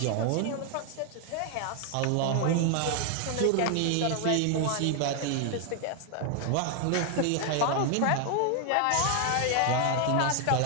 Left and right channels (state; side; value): different; both; correlation 0.00